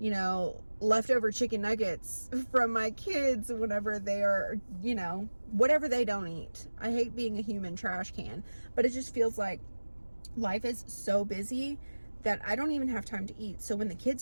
know, leftover chicken nuggets from my kids whenever they are, you know, whatever they don't eat. I hate being a human trash can, but it just feels like life is so busy that I don't even have time to eat. So when the kids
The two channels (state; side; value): inverted; both; correlation -1.00